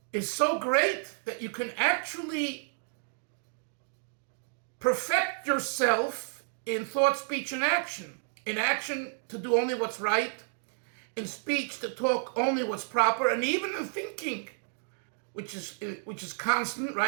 is so great that you can actually perfect yourself in thought, speech, and action. In action, to do only what's right. In speech, to talk only what's proper. And even in thinking, which is constant,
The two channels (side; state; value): left; silent; digital silence